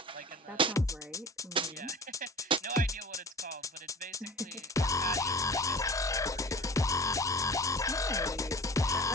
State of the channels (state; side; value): normal; both; correlation 0.41